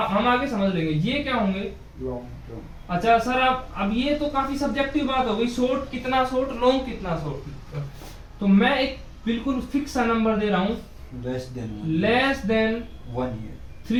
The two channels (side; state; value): both; identical; correlation 1.00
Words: आगे समझ लेंगे। ये क्या होंगे? Long term. अच्छा सर, आप अब ये तो काफी सब्जेक्टिव बात हो गई, शॉर्ट कितना शॉर्ट, लॉन्ग कितना शॉर्ट। तो मैं एक बिल्कुल फिक्स सा नंबर दे रहा हूं, लेस देन 1 ईयर,